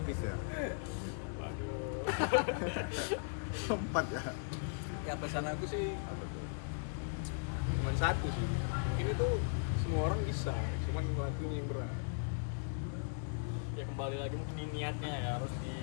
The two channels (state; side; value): silent; right; digital silence